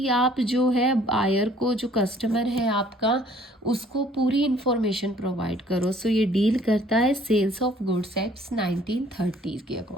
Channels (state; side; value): normal; both; correlation 0.58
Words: आप जो है बायर को, जो कस्टमर है आपका, उसको पूरी इंफॉर्मेशन प्रोवाइड करो। सो ये डील करता है सेल्स ऑफ गुड्स एक्ट्स 1930 के